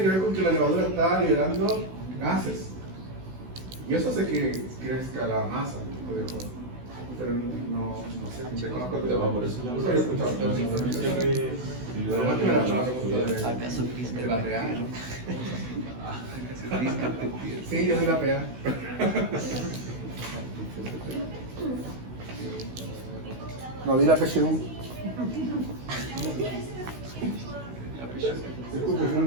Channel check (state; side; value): late; left; 16 ms